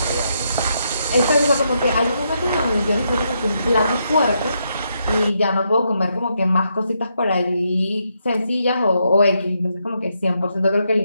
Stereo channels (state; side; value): inverted; both; correlation -0.79